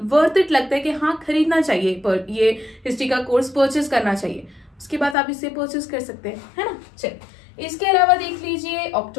वर्थ इट लगता है कि हाँ खरीदना चाहिए, पर ये हिस्ट्री का कोर्स परचेज करना चाहिए, उसके बाद आप इसे परचेज कर सकते हैं, है ना। चलिए इसके अलावा देख लीजिए,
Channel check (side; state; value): right; drops out; at 5.2 s